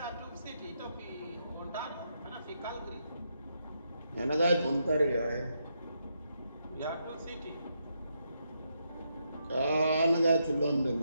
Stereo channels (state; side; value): inverted; both; correlation -0.81